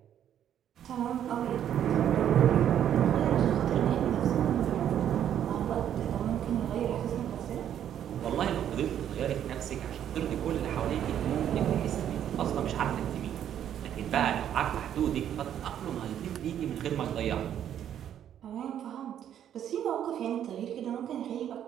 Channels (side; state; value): left; quieter; 10.1 dB